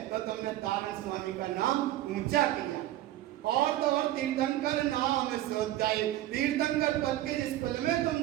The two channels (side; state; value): left; quieter; 14.3 dB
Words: तो तुमने तारण स्वामी का नाम ऊंचा किया। और तो और तीर्थंकर नाम सोचाई, तीर्थंकर पद के जिस कुल में तुम